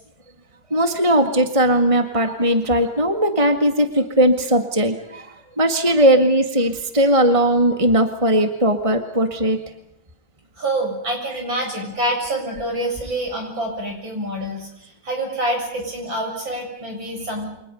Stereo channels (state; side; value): late; left; 1.6 ms